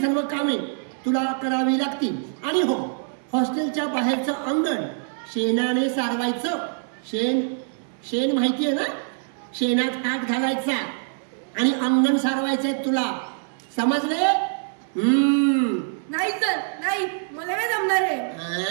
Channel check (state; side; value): silent; left; digital silence